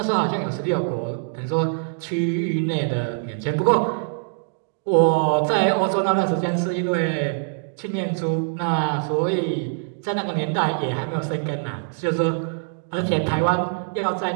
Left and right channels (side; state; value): left; silent; digital silence